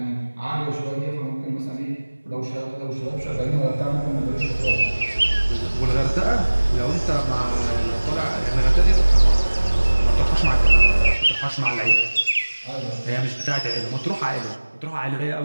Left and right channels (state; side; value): inverted; both; correlation -1.00